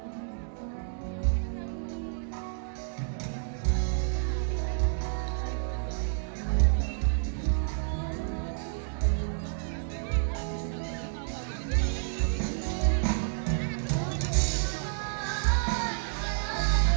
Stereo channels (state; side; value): silent; left; 58 dB below the other